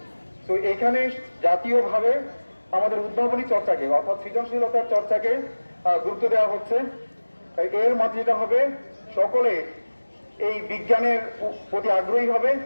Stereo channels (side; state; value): both; inverted; correlation -1.00